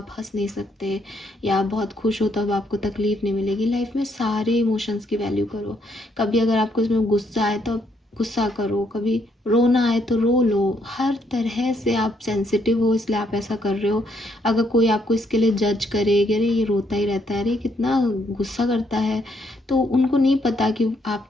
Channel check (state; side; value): normal; both; correlation 0.73